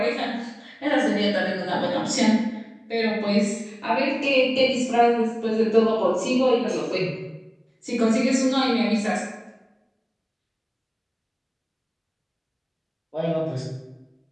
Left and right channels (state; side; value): identical; both; correlation 1.00